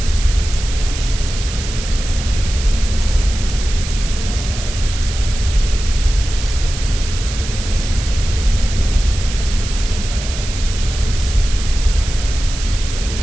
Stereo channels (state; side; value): noise; right; hiss, 9 dB below the sound